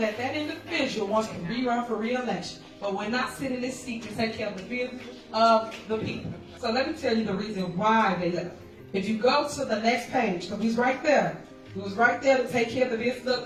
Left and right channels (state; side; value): identical; both; correlation 1.00